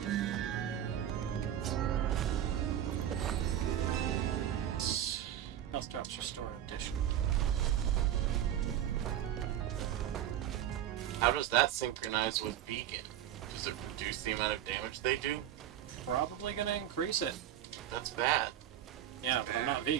Health drops restore in addition. How does that synchronize with vegan? Does it reduce the amount of damage they do? Probably gonna increase it. That's bad. Yeah, but I'm not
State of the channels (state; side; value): quieter; left; 11.1 dB